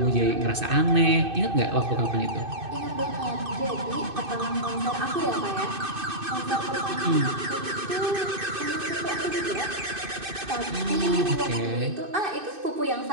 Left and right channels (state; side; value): late; left; 2.6 ms